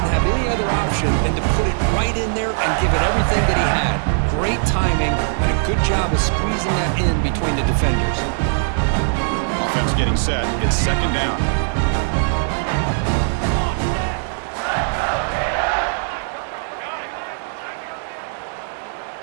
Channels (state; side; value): silent; left; 66 dB below the other